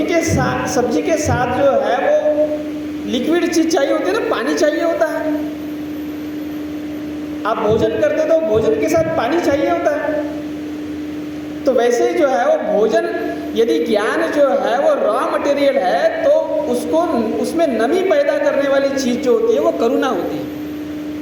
के साथ जो है वो लिक्विड चीज़ चाहिए होती है ना, पानी चाहिए होता है। आप भोजन करते तो भोजन के साथ पानी चाहिए होता है। तो वैसे ही जो है वो भोजन, यदि ज्ञान जो है वो रॉ मटेरियल है, तो उसमें नमी पैदा करने वाली चीज़ जो होती है वो करुणा होती है।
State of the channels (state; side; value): identical; both; correlation 1.00